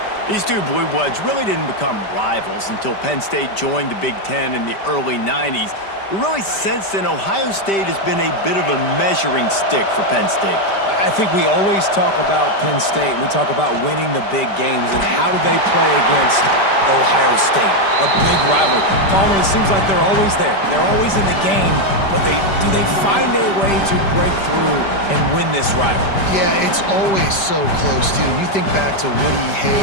These two Blue Bloods really didn't become rivals until Penn State joined the Big Ten in the early 90s. We really sense that Ohio State has been a bit of a measuring stick for Penn State. I think we always talk about Penn State. We talk about winning the big games and how do they play against Ohio State, a big rivalry. Palmer, it seems like they're always there. They're always in the game, but do they find a way to break through and win this rivalry? Yeah, it's always so close, too. You think back to Woody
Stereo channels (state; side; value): late; right; 5.1 ms